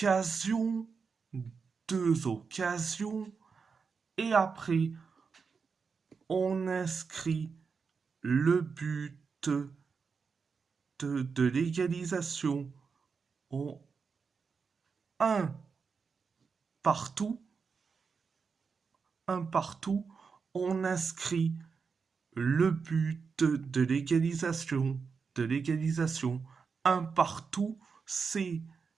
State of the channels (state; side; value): quieter; left; 5.4 dB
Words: deux occasions, et après on inscrit le but de l'égalisation en un partout, un partout, on inscrit le but de l'égalisation, un partout, c'est